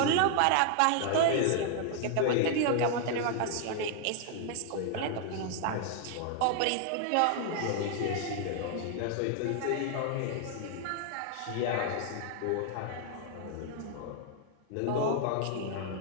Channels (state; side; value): different; both; correlation 0.00